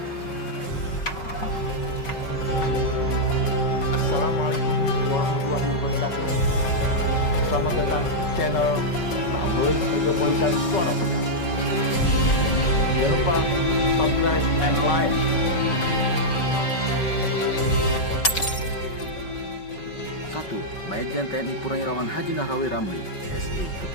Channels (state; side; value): late; right; 5.3 ms